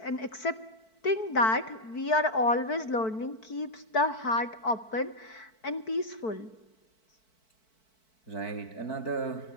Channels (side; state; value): right; late; 4.5 ms